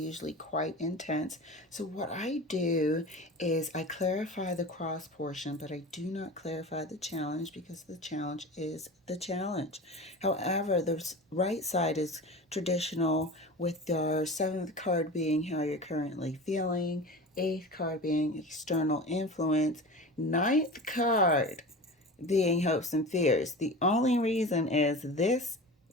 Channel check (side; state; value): both; normal; correlation 0.32